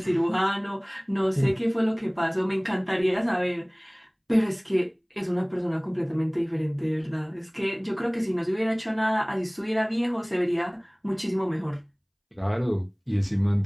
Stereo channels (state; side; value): identical; both; correlation 1.00